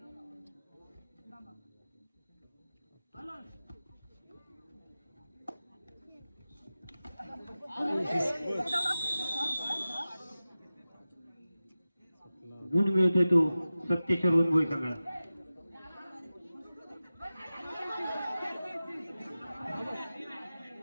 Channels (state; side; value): inverted; both; correlation -0.96